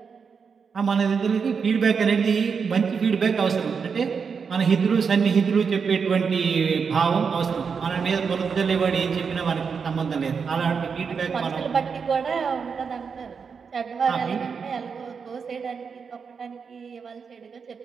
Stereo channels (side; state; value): left; quieter; 5.9 dB